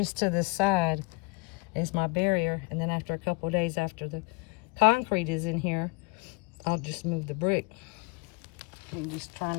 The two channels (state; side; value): quieter; right; 26.9 dB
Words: to this side as my barrier. And then after a couple of days after the concrete is in here, I'll just move the brick. I'm just trying